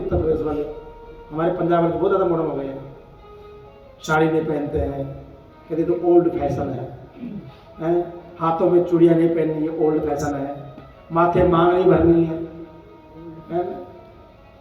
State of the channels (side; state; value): both; identical; correlation 1.00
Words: प्रदेश वाले। हमारे पंजाब में बहुत ज्यादा मॉडर्न हो गए हैं, साड़ी नहीं पहनते हैं, कहते तो ओल्ड फैशन है। हाथों में चूड़ियां नहीं पहननी है, ओल्ड फैशन है। माथे मांग नहीं भरनी है,